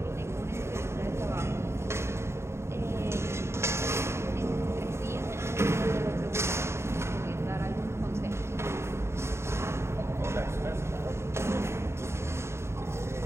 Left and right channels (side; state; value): left; late; 0.13 ms